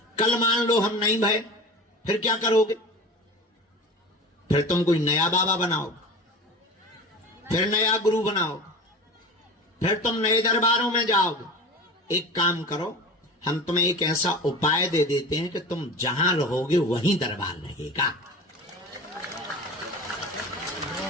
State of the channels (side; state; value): both; normal; correlation 0.33